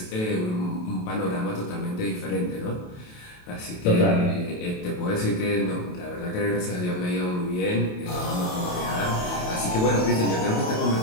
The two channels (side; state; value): right; late; 28 ms